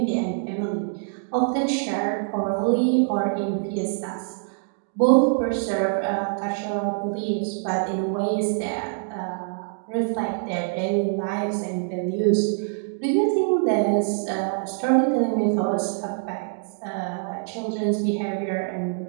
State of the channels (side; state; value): left; silent; digital silence